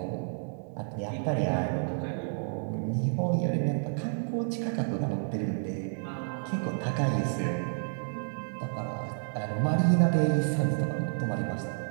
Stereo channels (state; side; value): silent; left; digital silence